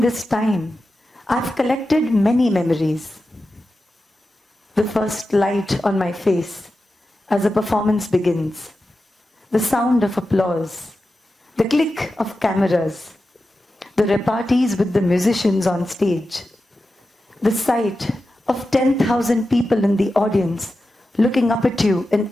this time, I've collected many memories. The first light on my face as a performance begins, the sound of applause, the click of cameras, the repartees with the musicians on stage, the sight of 10,000 people in the audience looking up at you in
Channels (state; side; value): normal; both; correlation 0.92